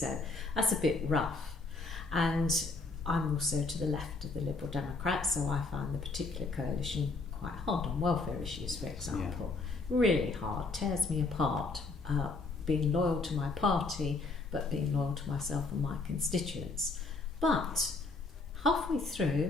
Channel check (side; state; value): right; quieter; 3.7 dB